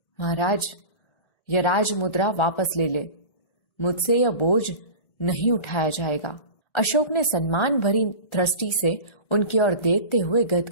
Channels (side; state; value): right; late; 1.4 ms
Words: महाराज, यह राजमुद्रा वापस ले ले, मुझसे यह बोझ नहीं उठाया जाएगा। अशोक ने सम्मान भरी दृष्टि से उनकी ओर देखते हुए